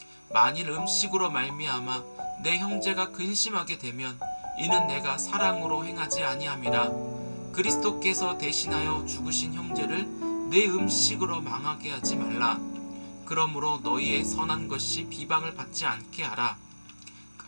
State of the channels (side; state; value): both; inverted; correlation -1.00